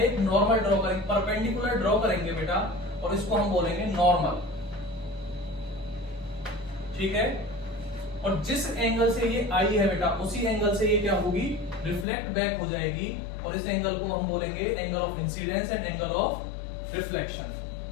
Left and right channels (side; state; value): right; drops out; at 12.1 s